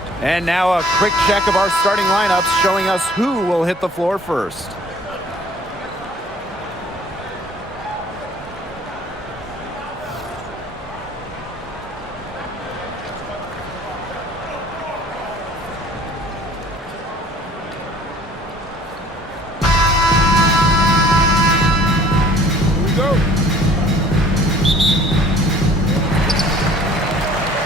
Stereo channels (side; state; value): both; normal; correlation 0.53